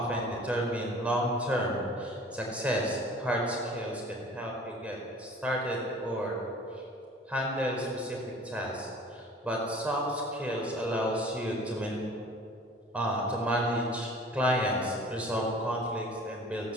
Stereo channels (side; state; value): both; normal; correlation 0.46